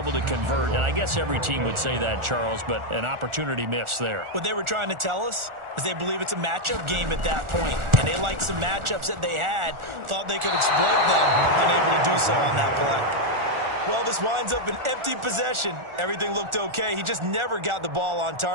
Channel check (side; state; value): left; late; 1.4 ms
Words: to convert. And I guess every team would say that, Charles, but an opportunity missed there. What they were trying to tell us is they believe it's a matchup game at that point. And they liked some matchups that they had, thought they could exploit them, unable to do so on that play. Well, this winds up an empty possession. Everything looked okay. He just never got the ball on